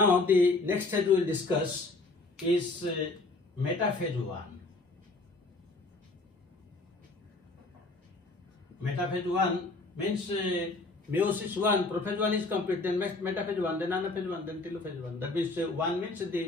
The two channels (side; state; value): right; quieter; 3.3 dB